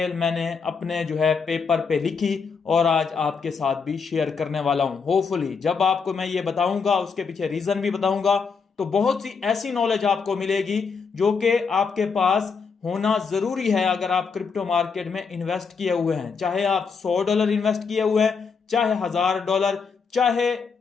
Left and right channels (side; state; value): right; quieter; 5.4 dB